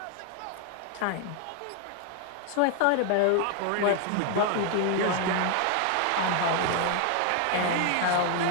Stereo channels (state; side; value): different; both; correlation 0.00